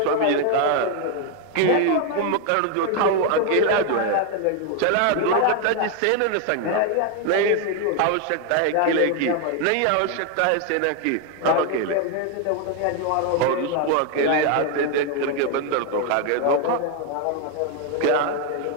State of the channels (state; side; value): different; both; correlation 0.01